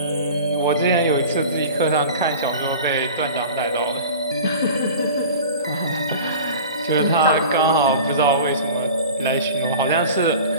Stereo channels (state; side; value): inverted; both; correlation -0.38